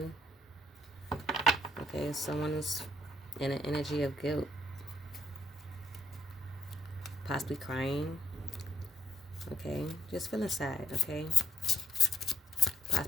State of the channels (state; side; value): normal; both; correlation 0.70